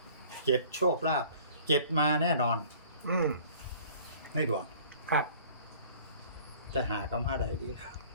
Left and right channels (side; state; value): both; inverted; correlation -0.50